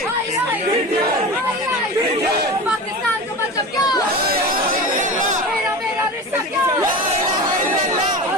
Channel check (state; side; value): normal; both; correlation 0.29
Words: पाकिस्तान को मतलब क्या? मेरा रिश्ता क्या?